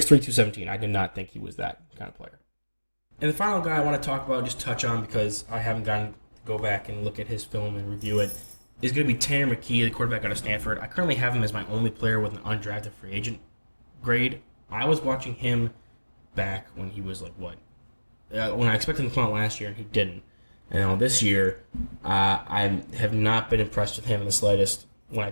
217. I did not think he was that kind of player. And the final guy I want to talk about, just touch on, because I haven't gotten to go back and look at his film and review it, is going to be Tanner McKee, the quarterback out of Stanford. I currently have him as my only player with an undrafted free agent grade. I was watching him back when he was like, what? When I expected him to come out last year, and he didn't. And this year, I have not been impressed with him in the slightest. When I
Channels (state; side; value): inverted; both; correlation -1.00